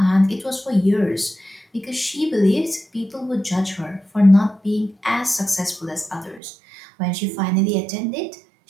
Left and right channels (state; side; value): drops out; left; at 6.4 s